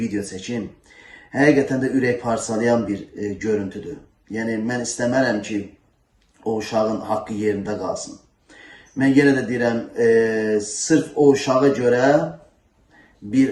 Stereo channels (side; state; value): both; identical; correlation 1.00